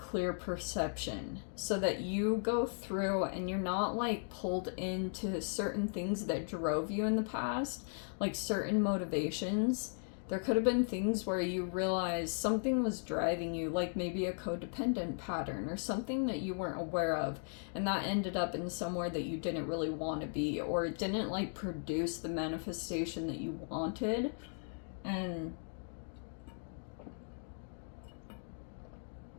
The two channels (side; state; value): right; silent; 53 dB below the other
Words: perception so that you go through and you're not like pulled into certain things that drove you in the past, like certain motivations. There could have been things where you realized something was driving you, like maybe a codependent pattern or something that you weren't aware of, and that ended up in somewhere that you didn't really want to be, or it didn't like produce the manifestation that you wanted. And